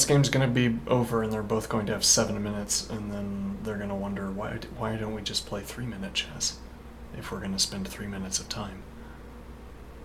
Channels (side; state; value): both; identical; correlation 1.00